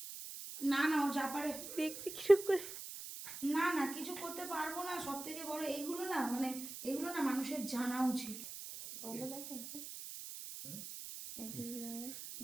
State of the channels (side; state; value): right; noise; hiss, 9 dB below the sound